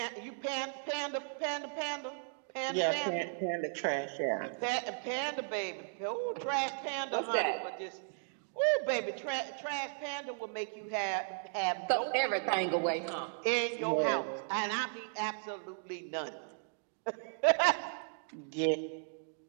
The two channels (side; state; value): left; silent; digital silence